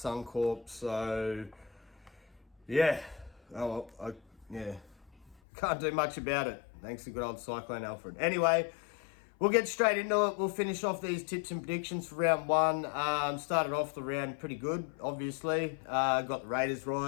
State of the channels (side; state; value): right; drops out; at 5.4 s